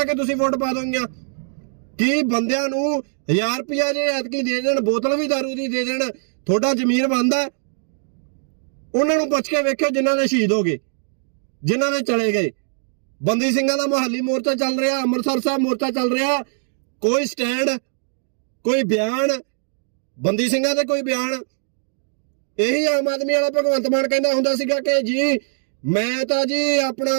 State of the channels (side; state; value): left; silent; digital silence